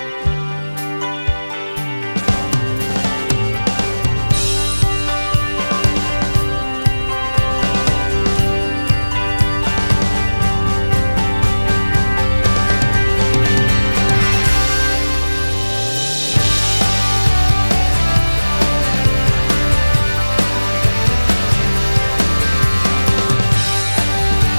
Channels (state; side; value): inverted; both; correlation -1.00